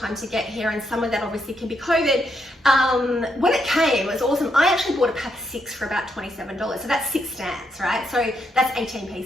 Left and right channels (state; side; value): normal; both; correlation 0.78